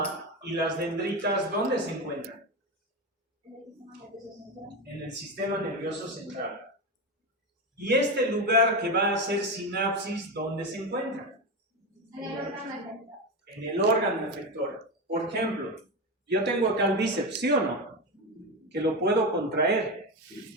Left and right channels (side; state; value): both; normal; correlation 0.16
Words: y las dendritas, ¿dónde se encuentran? En el sistema nervioso central. ¿Y este lugar que va a hacer sinapsis, dónde se encuentra? En el órgano efector. Por ejemplo, yo tengo acá el bíceps, ¿sí o no? Que lo puedo contraer.